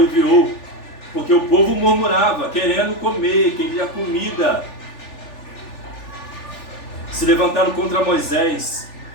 enviou. Porque o povo murmurava, querendo comer, queria comida. Se levantaram contra Moisés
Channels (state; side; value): late; right; 3.4 ms